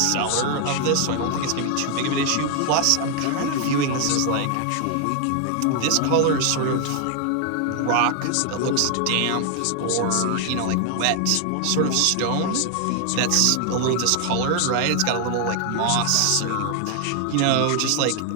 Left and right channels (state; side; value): different; both; correlation 0.00